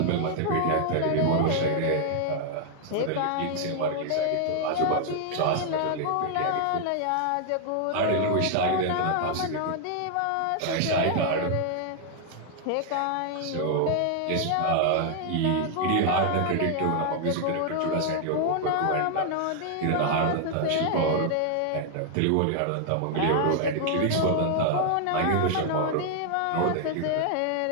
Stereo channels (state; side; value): different; both; correlation 0.00